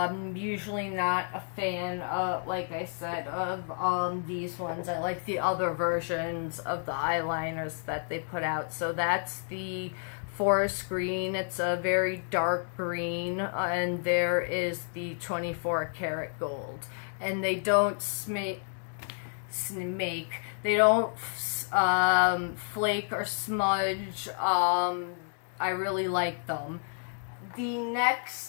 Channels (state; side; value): silent; right; 58 dB below the other